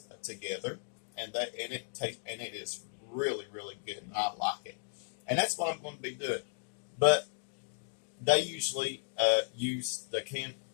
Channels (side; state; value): right; silent; digital silence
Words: together, and it is really, really good, and I like it. And that's what I'm going to be doing. But they usually use the